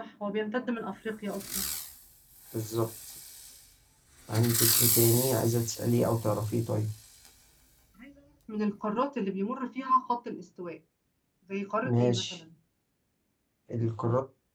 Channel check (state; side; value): identical; both; correlation 1.00